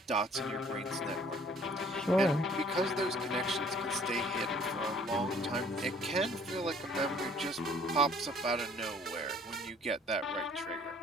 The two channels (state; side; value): normal; both; correlation 0.56